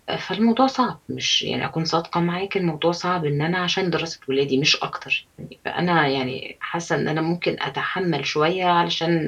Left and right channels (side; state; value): both; identical; correlation 1.00